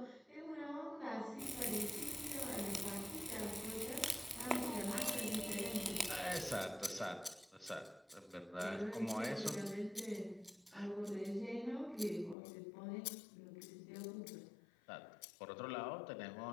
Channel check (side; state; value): right; drops out; at 12.4 s